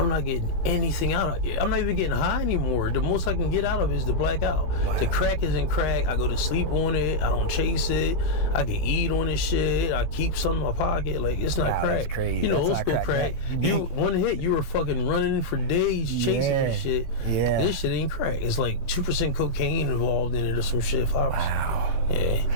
not getting anything out of it. I'm not even getting high anymore. The most I can get out of it is the blackout. Wow. The crack isn't crack. I go to sleep on it. I don't chase it. I can eat on this shit. I keep some in my pocket. Like, it's not crack. That's crazy. You know, old school crack. You one hit, you were fucking running for days chasing this shit. Yeah. This shit ain't crack. It's like 2% cocaine involved in it or some shit. 5%. Wow.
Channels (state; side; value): late; right; 18 ms